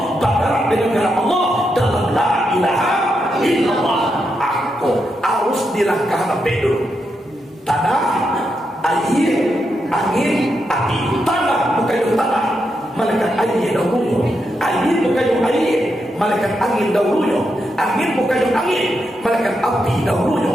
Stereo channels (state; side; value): normal; both; correlation 0.83